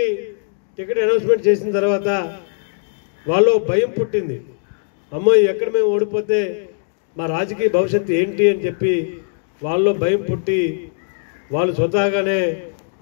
టికెట్ అనౌన్స్మెంట్ చేసిన తర్వాత వాళ్ళు భయం పుట్టింది, అమ్మో ఎక్కడ మేము ఓడిపోతే మా రాజకీయ భవిష్యత్తు ఏంటి అని చెప్పి వాళ్ళు భయం పుట్టి వాళ్ళు స్వతహాగానే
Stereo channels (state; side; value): silent; right; digital silence